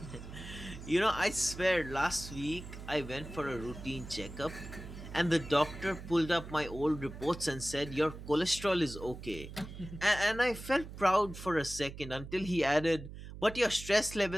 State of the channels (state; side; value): noise; right; hum, 12 dB below the sound